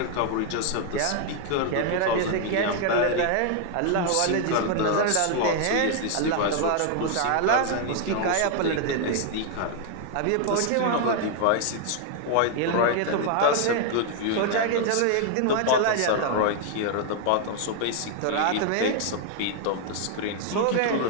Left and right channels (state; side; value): different; both; correlation 0.00